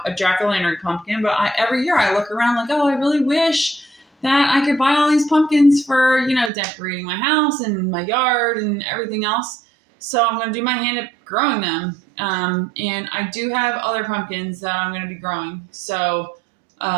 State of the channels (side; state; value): left; drops out; at 6.5 s